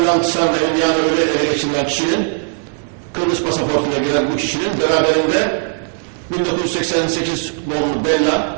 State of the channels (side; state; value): left; silent; 59 dB below the other